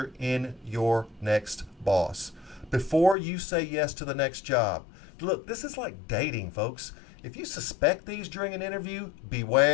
in your next boss. Before you say yes to the next job. Look, this is like dating, folks. If you suspect these during an interview,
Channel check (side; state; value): right; drops out; at 3.2 s